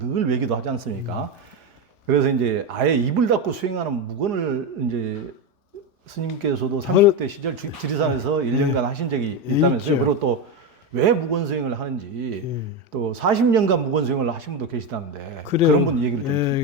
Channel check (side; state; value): both; normal; correlation 0.13